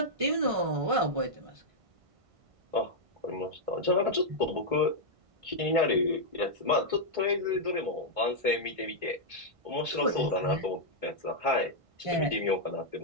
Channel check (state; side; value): late; left; 1.5 ms